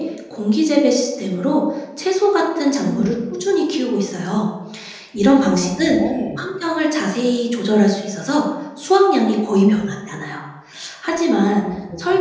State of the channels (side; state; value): both; identical; correlation 1.00